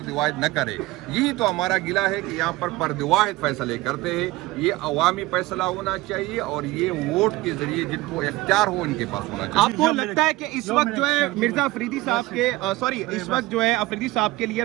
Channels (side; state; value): left; quieter; 19.1 dB